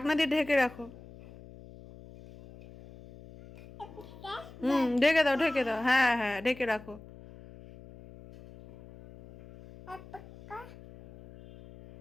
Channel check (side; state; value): left; noise; hum, 19 dB below the sound